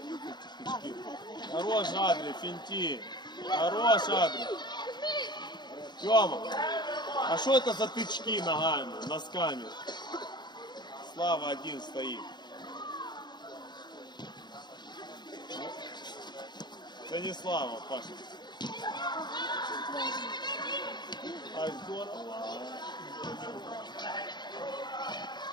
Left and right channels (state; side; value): late; right; 0.21 ms